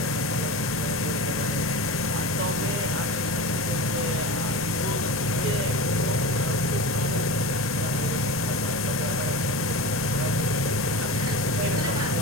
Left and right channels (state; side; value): normal; both; correlation 0.27